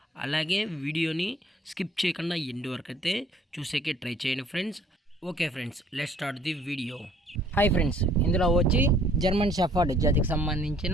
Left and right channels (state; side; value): normal; both; correlation 0.59